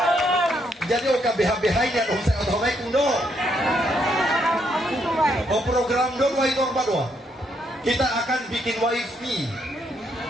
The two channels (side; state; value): both; normal; correlation 0.75